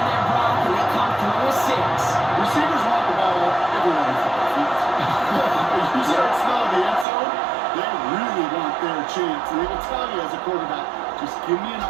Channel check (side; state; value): left; drops out; at 7.1 s